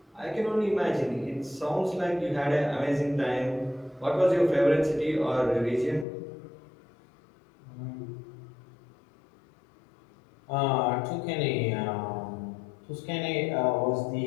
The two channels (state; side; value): drops out; right; at 6.1 s